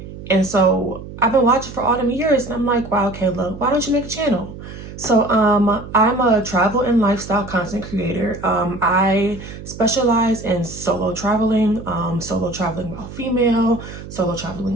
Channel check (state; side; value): noise; right; hum, 13 dB below the sound